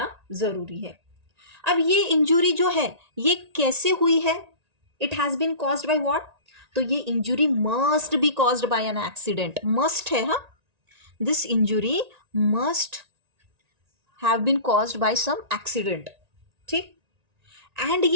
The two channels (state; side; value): late; left; 1.9 ms